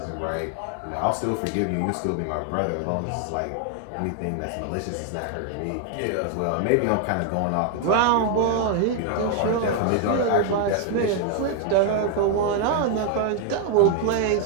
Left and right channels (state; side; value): different; both; correlation 0.00